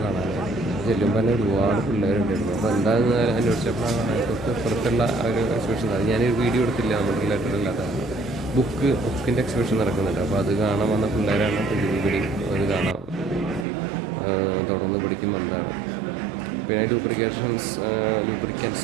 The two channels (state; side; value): drops out; left; at 13.7 s